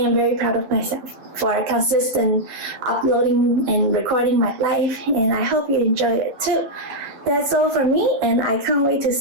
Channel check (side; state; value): left; late; 11 ms